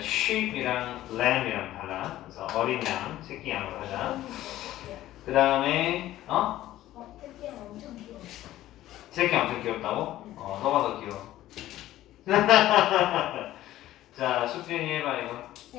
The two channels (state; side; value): quieter; right; 14.4 dB